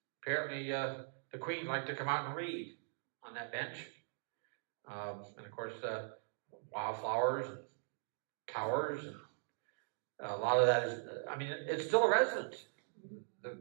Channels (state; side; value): silent; left; digital silence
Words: Apparently, the Queen liked to come out and read on that bench. And of course, wildflowers and towers. And a lot of that is, I mean, it's still a residence.